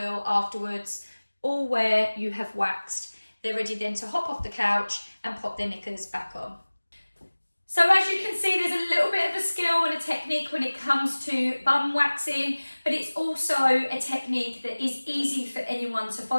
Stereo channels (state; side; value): inverted; both; correlation -1.00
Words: afterwards, all where you have waxed. They're ready then to hop off the couch and pop their knickers back on. So as you can see, there's a little bit of a skill and a technique when it comes to bum waxing, but it's also a technique that is easy for anyone to